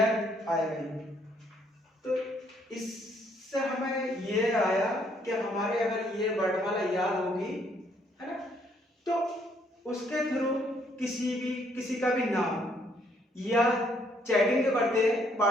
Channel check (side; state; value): both; normal; correlation 0.68